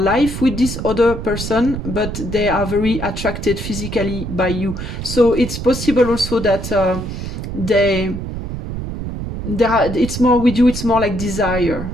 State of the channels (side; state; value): right; noise; rumble, 6 dB below the sound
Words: with this other person, but they are very attracted physically by you. So it's possible also that it's more with you, it's more like desire.